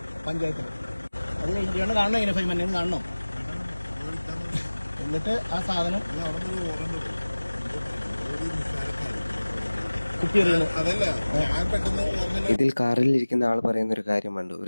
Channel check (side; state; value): both; inverted; correlation -1.00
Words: പഞ്ചായത്തിൽ. അത് കഴിഞ്ഞ് ചേട്ടൻ കാണണം, ഇങ്ങനെ ഫൈൻ എന്നെ കാണണം. എന്നിട്ട് ആ സാധനം ഇതിൽ കാറിലിരിക്കുന്ന ആൾ പറയുന്ന ഒരു കാര്യം കണ്ടു.